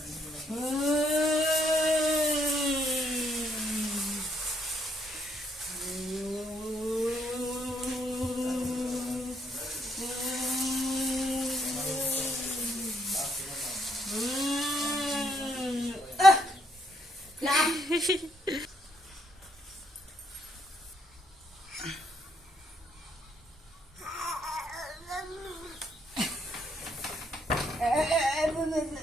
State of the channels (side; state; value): both; normal; correlation 0.72